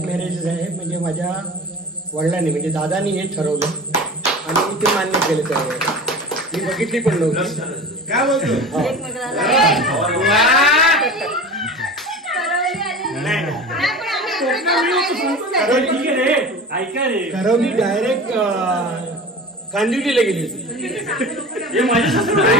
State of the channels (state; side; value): normal; both; correlation 0.34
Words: मॅरेज आहे. म्हणजे माझ्या वडिलांनी म्हणजे दादानी हे ठरवलं आणि मी ते मान्य केलं. त्यावेळेस मी बघितली पण नव्हती. काय बोलतो. करवली डायरेक्ट कांदिवलीला गेली होती. हे माझ्या सासू